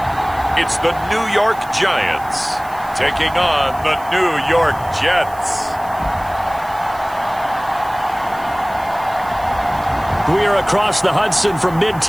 It's the New York Giants taking on the New York Jets. We are across the Hudson from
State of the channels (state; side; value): noise; right; hiss, 22 dB below the sound